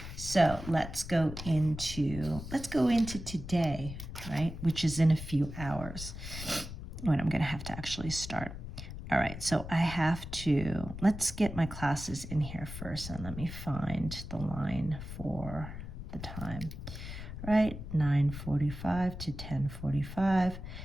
So let's go into today, right? Which is in a few hours when I'm going to have to actually start. All right. So I have to, let's get my classes in here first, and let me find the line for the time. Right, 9:45 to 10:45.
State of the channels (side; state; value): left; noise; rumble, 9 dB below the sound